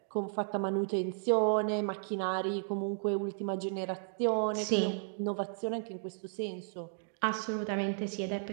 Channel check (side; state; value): left; silent; digital silence